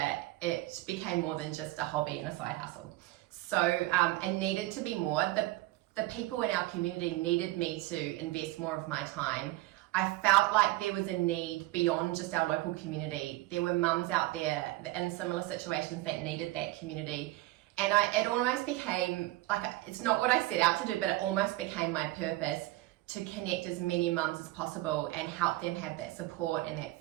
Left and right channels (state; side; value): quieter; left; 18.3 dB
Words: it became more than just a hobby and a side hustle. So it needed to be more. The people in our community needed me to invest more of my time. I felt like there was a need beyond just our local community. There were mums out there in similar situations that needed that community. And it almost became, like, it's not what I set out to do, but it almost became my purpose to connect as many mums as possible and help them have that support and that